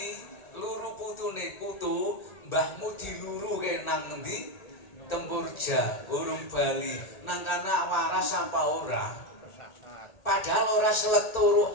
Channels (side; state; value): right; late; 1.4 ms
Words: luru putune putu, mbahmu diluruke nang endi? Tempurja, urung bali. Nang kana waras apa ora? Padahal ora selek turu